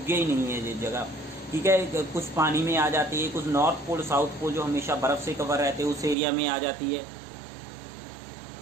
ही नहीं है ये जगह, ठीक है। कुछ पानी में आ जाती है, कुछ नॉर्थ पोल साउथ पोल जो हमेशा बर्फ से कवर रहते हैं उस एरिया में आ जाती है।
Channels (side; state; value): left; drops out; at 6.2 s